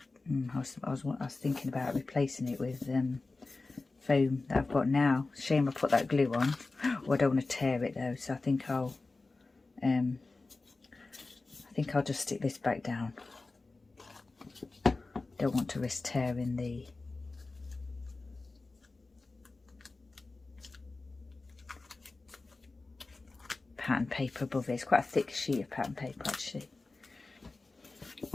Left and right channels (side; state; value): right; quieter; 3.5 dB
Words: I was thinking about replacing it with foam that I've got now. Shame I put that glue on. Oh, I don't want to tear it though, so I think I'll I think I'll just stick this back down. Don't want to risk tearing the pattern paper above it. It's quite a thick sheet of pattern paper actually.